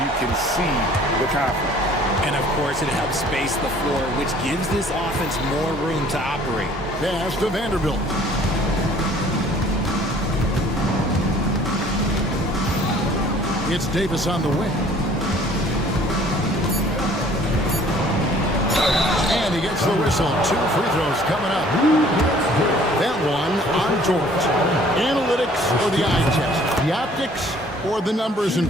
can see the confidence. And of course, it helps space the floor, which gives this offense more room to operate. Pass to Vanderbilt. It's Davis on the wing. And he gets the whistle. 2 free throws coming up. That one on George. Analytics or the eye test? The optics or the numbers in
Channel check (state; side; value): normal; both; correlation 0.54